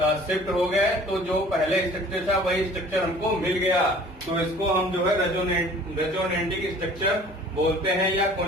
शिफ्ट हो गए, तो जो पहले स्ट्रक्चर था वही स्ट्रक्चर हमको मिल गया। तो इसको हम जो है रेजोनेटिक स्ट्रक्चर बोलते हैं या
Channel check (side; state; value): both; normal; correlation 0.49